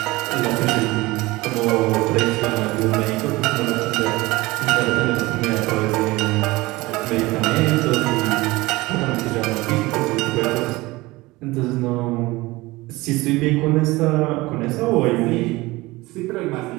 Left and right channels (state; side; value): quieter; left; 20.8 dB